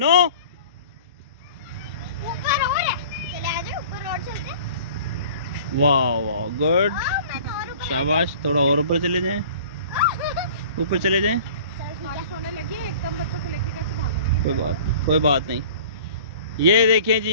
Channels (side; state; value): both; inverted; correlation -0.45